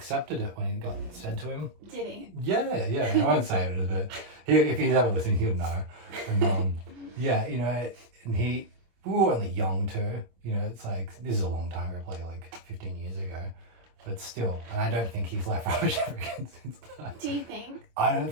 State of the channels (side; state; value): left; late; 25 ms